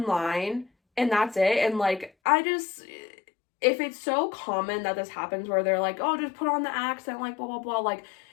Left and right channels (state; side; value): drops out; right; at 2.1 s